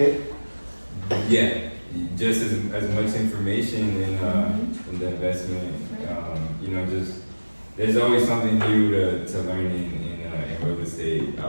Yeah, just as much information in the investment. Just there's always something new to learn in real estate.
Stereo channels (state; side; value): inverted; both; correlation -1.00